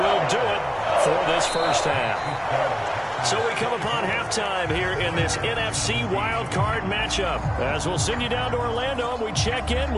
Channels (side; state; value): both; identical; correlation 1.00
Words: do it for this first half. So we come upon halftime here in this NFC wildcard matchup. As we'll send you down to Orlando, and we check in